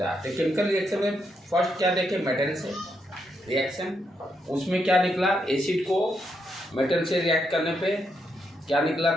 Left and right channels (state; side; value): normal; both; correlation 0.80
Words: है। तो केमिकल रिएक्शन में फर्स्ट क्या देखे, मेटल से रिएक्शन, उसमें क्या निकला, एसिड को मेटल से रिएक्ट करने पे क्या निकला